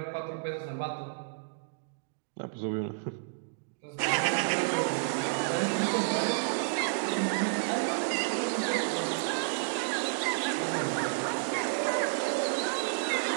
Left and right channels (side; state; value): left; silent; digital silence